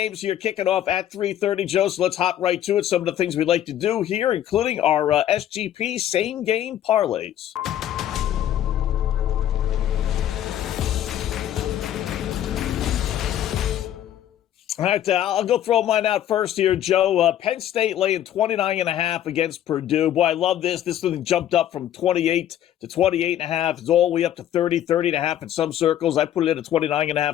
here kicking off at 3:30, Joe, so let's hop right to it. Some of the things we like to do here, including our SGP same-game parlays. All right, I'll go throw mine out first here, Joe. Penn State laying 29.5 against Purdue. Boy, I love this. This one jumped up from 28 to 28.5. It's all the way up to 30.5 in some circles. I put it in at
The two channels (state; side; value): quieter; right; 11.4 dB